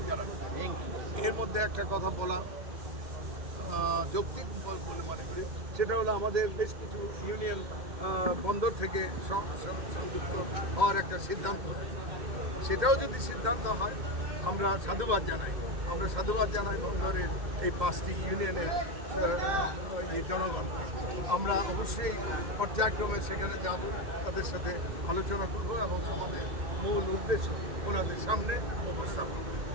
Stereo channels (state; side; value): late; left; 2.1 ms